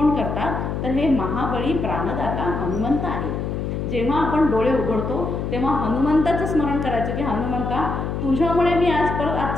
करतात, तर हे महाबळी प्राणदाता हनुमंत आहे. जेव्हा आपण डोळे उघडतो तेव्हा हनुमंताचं स्मरण करायचं की हनुमंता तुझ्यामुळे मी आज परत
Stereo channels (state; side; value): noise; left; hum, 3 dB below the sound